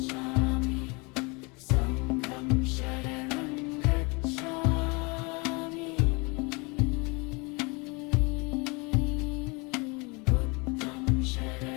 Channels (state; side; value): quieter; right; 28.6 dB